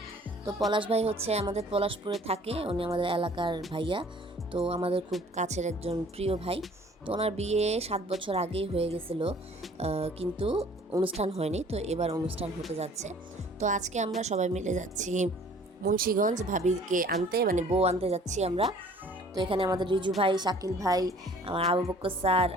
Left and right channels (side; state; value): both; normal; correlation 0.53